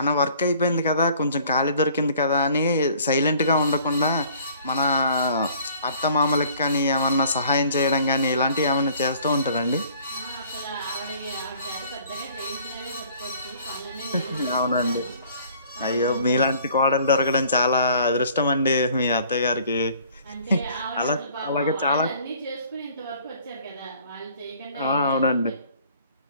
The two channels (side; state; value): both; inverted; correlation -0.55